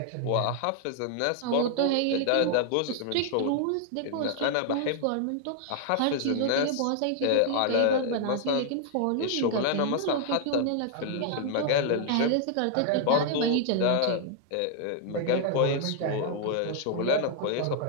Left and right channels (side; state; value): both; different; correlation 0.00